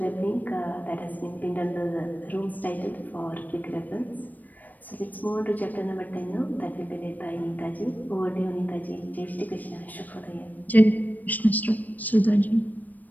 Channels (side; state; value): right; late; 0.083 ms